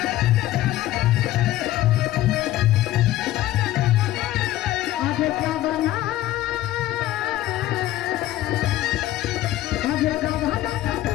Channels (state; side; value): quieter; right; 14.7 dB